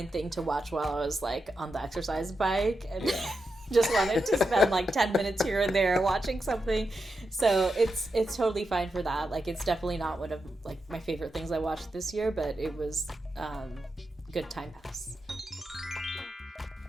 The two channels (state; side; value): normal; both; correlation 0.87